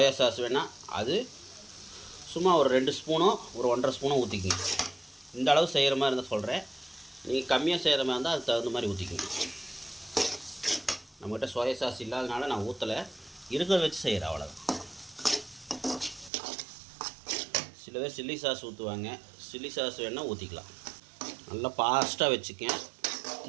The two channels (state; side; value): drops out; left; at 16.3 s